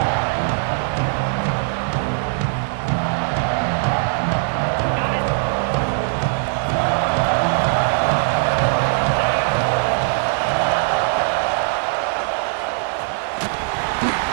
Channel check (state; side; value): silent; left; 58 dB below the other